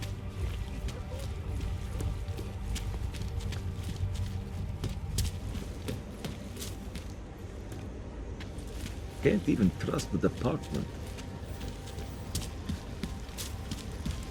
Can't even trust the department.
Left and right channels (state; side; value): identical; both; correlation 1.00